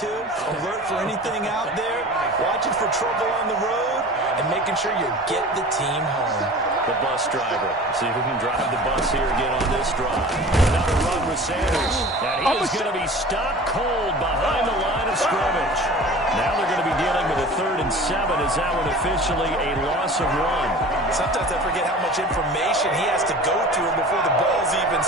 alert for anything out there, watching for trouble on the road, and making sure you get the team home. The bus driver. See if we can drive the bus here again on this drive. Another run with Sanders. And he is going to be stopped cold behind the line of scrimmage. Now they're going to be dealing with a 3rd and 7 as that one officially a loss of 1. Sometimes I forget how much information he has to go through before the ball's even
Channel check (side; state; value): both; normal; correlation 0.40